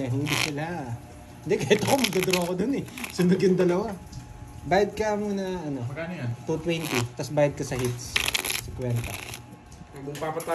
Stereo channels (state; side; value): identical; both; correlation 1.00